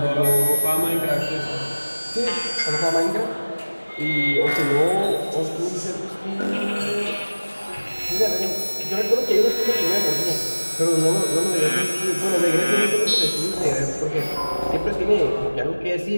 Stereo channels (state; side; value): inverted; both; correlation -1.00